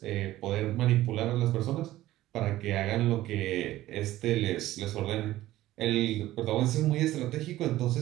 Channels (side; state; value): left; quieter; 15.4 dB